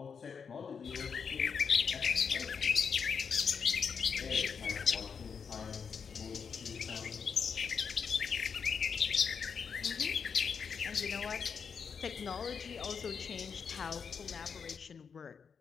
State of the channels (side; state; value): right; quieter; 6.3 dB